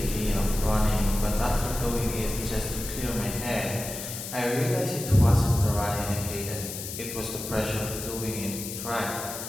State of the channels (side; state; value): left; noise; hiss, 8 dB below the sound